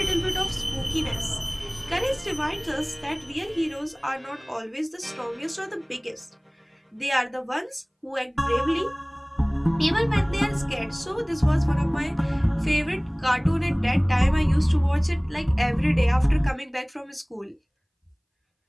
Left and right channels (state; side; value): identical; both; correlation 1.00